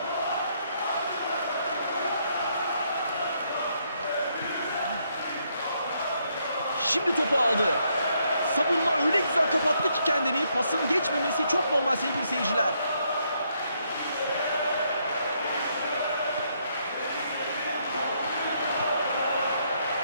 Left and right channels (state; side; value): inverted; both; correlation -0.74